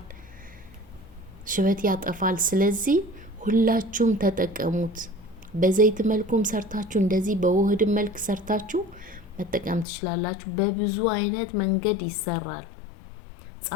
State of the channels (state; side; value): drops out; right; at 9.9 s